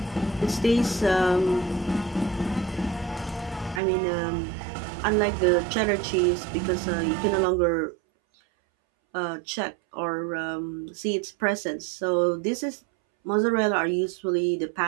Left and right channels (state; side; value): drops out; left; at 3.8 s